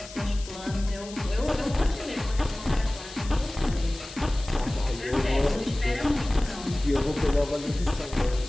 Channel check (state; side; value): noise; left; hiss, 16 dB below the sound